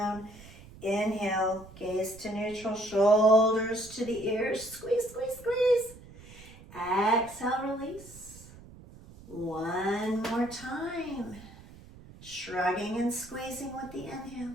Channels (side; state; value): right; noise; rumble, 19 dB below the sound